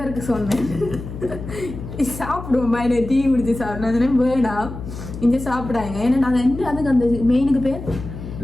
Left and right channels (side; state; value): left; noise; hum, 10 dB below the sound